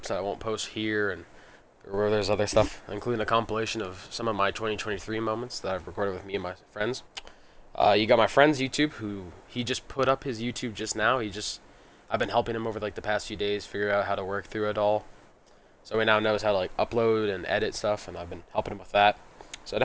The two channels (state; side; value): identical; both; correlation 1.00